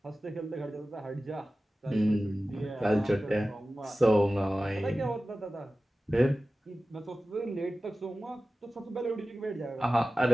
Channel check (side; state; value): both; normal; correlation 0.96